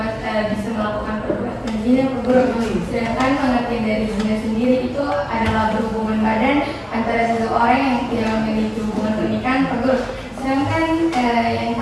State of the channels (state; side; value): identical; both; correlation 1.00